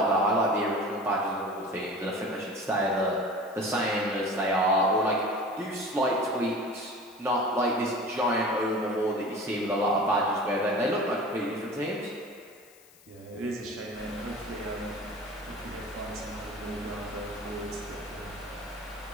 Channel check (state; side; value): noise; left; hiss, 25 dB below the sound